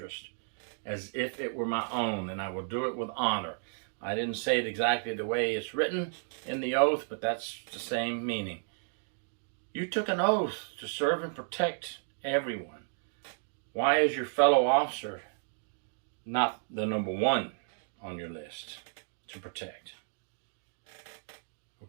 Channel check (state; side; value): silent; left; 56 dB below the other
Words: as if it were my own, and I will do it with honor. I didn't say it exactly the way it's written in the oath, but that's the same meaning. You took an oath to serve and protect everyone. Why is your fellow officer not the number 1 on your list to protect?